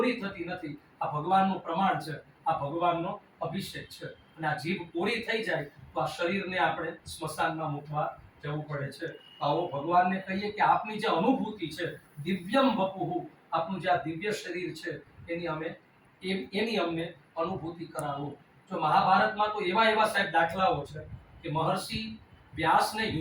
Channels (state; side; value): identical; both; correlation 1.00